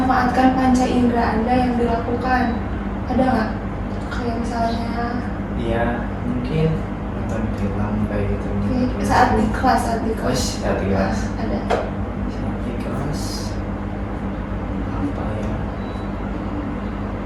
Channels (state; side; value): identical; both; correlation 1.00